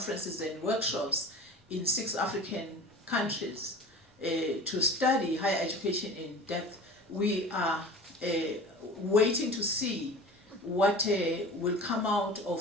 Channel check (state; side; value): normal; both; correlation 0.38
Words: and workshops in 6 African countries to study higher education in depth. We are waiting to see what will come out